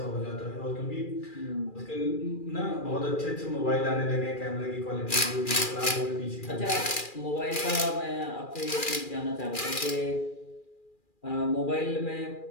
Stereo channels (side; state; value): right; late; 2.4 ms